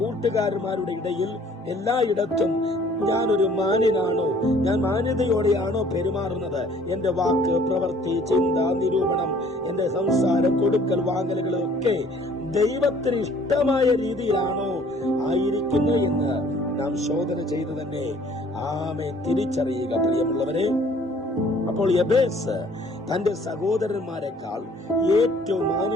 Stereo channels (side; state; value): both; normal; correlation 0.56